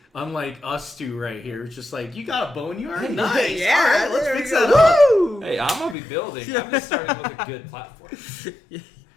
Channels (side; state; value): right; drops out; at 6.0 s